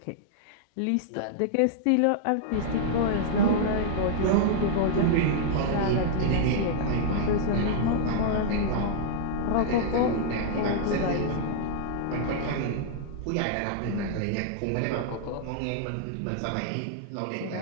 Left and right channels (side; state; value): both; different; correlation -0.01